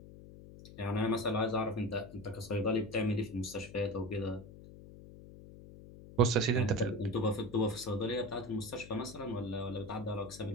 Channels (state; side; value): noise; left; hum, 16 dB below the sound